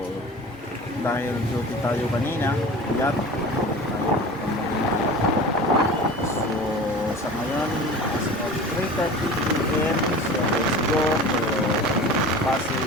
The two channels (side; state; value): both; normal; correlation 0.37